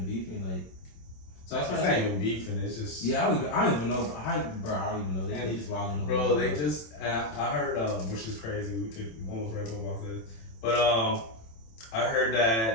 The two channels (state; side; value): late; right; 27 ms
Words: beefing like. So that's it's not even beefing. It's just. Yeah, I don't even know. I don't even know. They just wilding. Bro, they just. I heard, which is crazy. We could almost write about this, but I heard